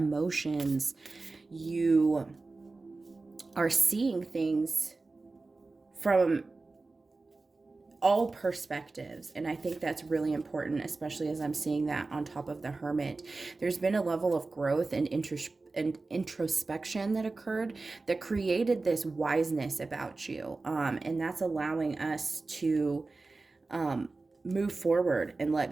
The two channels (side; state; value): left; quieter; 3.6 dB